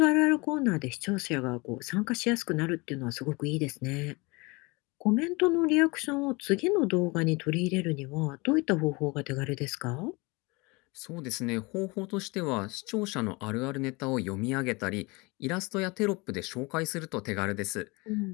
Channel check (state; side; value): quieter; right; 26.1 dB